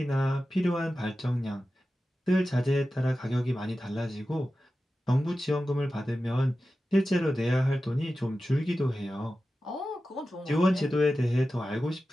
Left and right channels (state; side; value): normal; both; correlation 0.93